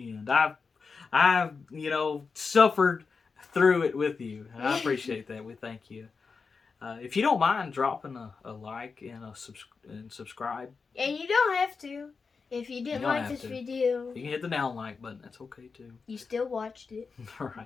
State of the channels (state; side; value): quieter; right; 5.0 dB